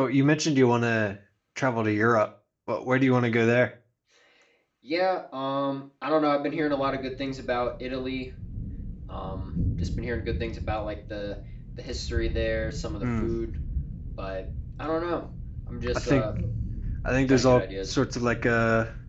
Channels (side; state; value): both; identical; correlation 1.00